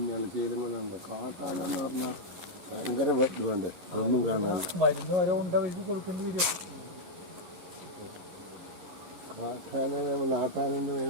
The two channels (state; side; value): late; left; 11 ms